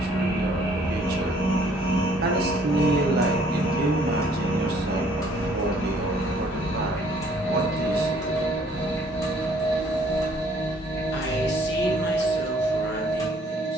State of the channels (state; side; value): normal; both; correlation 0.60